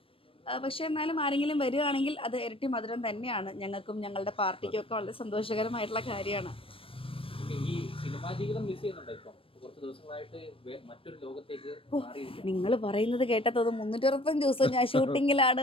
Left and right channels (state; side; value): late; right; 0.26 ms